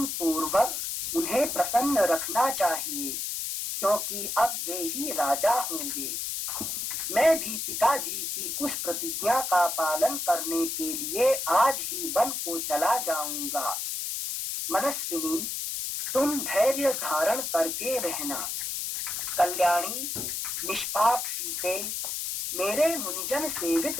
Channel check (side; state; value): left; noise; hiss, 3 dB below the sound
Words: पूर्वक उन्हें प्रसन्न रखना चाहिए, क्योंकि अब वे ही राजा होंगे। मैं भी पिताजी की उस प्रतिज्ञा का पालन करने के लिए आज ही वन को चला जाऊंगा। मनस्विनी, तुम धैर्य धारण करके रहना। कल्याणी, निष्पाप सीते, मेरे मुनिजन सेवित